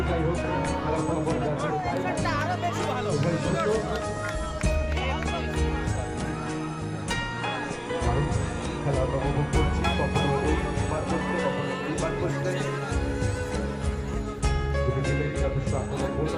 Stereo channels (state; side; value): identical; both; correlation 1.00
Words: যাই হোক খেলার ফলাফল যা ছিল তাই। উভয় শূন্য। কারণ খেলা আমরা উপভোগ করছি, কখনো ওই পার করছে, কখনো এই পার করছে। দুটি টিমেরই যথেষ্ট আক্রমণ